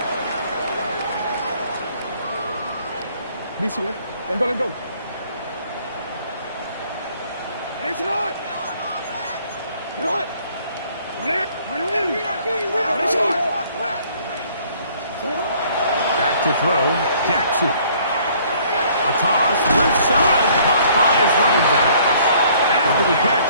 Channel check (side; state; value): both; inverted; correlation -0.59